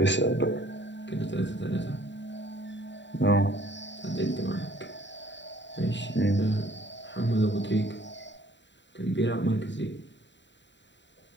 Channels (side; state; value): right; late; 0.52 ms